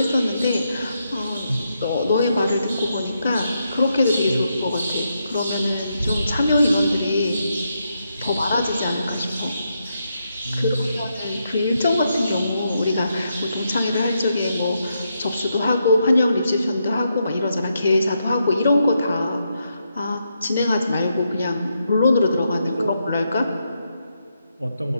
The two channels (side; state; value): both; inverted; correlation -0.82